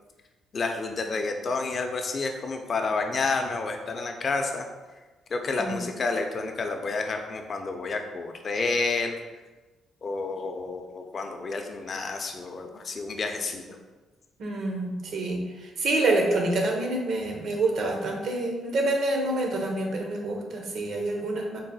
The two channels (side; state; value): both; normal; correlation 0.74